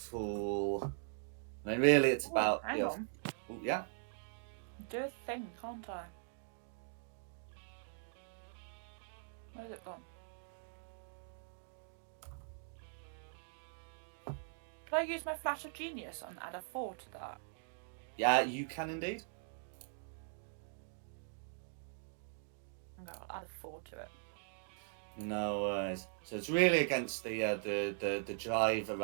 I mean, really, it's about Hang on. Ooh, yeah. Do a thing, can't I? Where's it gone? Can I use my flash of genius and add a 4 to that? Yeah, you can indeed. Okay, I'll add a 4 to it. No worries. So it's really against the driver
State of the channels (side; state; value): left; silent; digital silence